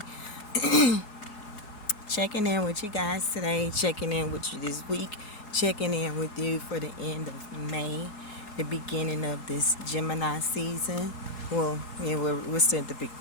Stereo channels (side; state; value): right; late; 4.7 ms